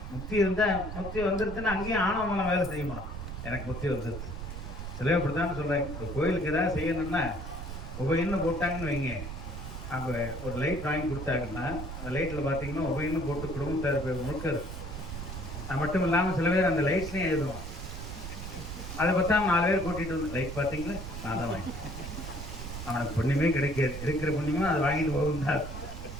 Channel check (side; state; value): right; noise; rumble, 8 dB below the sound